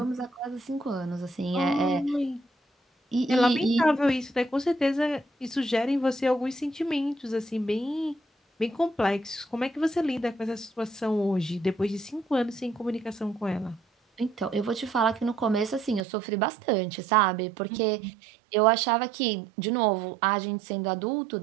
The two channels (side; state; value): left; drops out; at 16.1 s